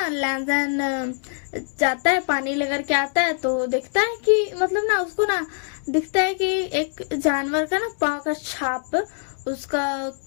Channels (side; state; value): right; silent; digital silence